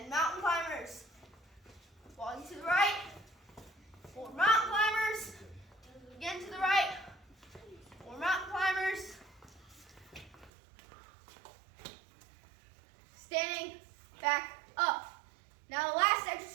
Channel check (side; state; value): left; drops out; at 10.5 s